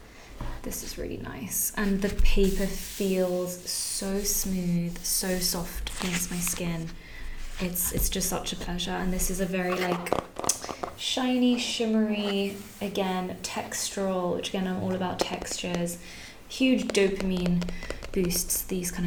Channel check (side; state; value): both; identical; correlation 1.00